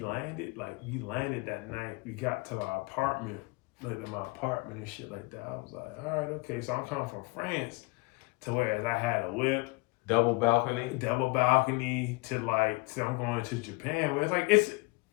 that night, we got to our apartment, like my apartment and shit like that. I was like, all right, okay. So I'm coming from France to whereas I had a whip. Double balcony to I'm going to Japan, where it's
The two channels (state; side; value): quieter; right; 25.3 dB